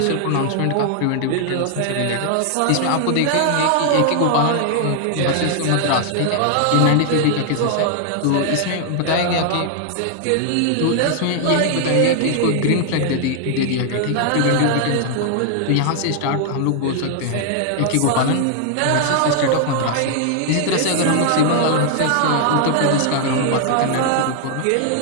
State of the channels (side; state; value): both; different; correlation 0.00